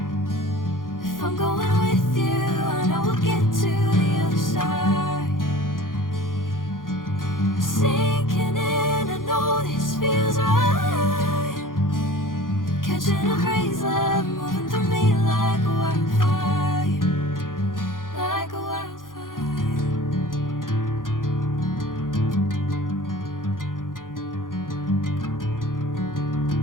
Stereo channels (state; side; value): late; right; 0.90 ms